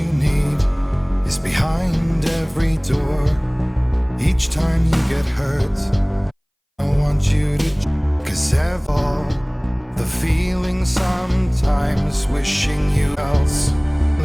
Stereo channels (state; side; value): identical; both; correlation 1.00